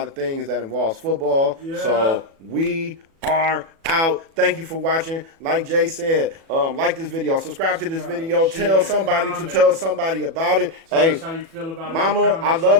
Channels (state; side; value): late; left; 37 ms